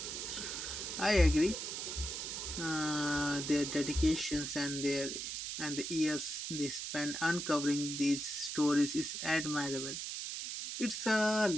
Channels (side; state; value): right; noise; hiss, 5 dB below the sound